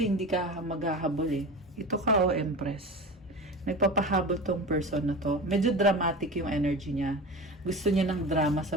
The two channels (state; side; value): normal; both; correlation 0.30